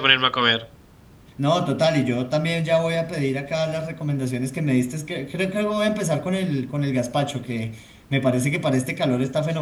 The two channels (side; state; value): both; identical; correlation 1.00